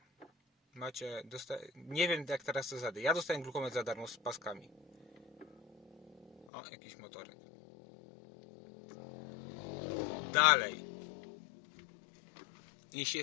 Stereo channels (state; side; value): drops out; right; at 6.5 s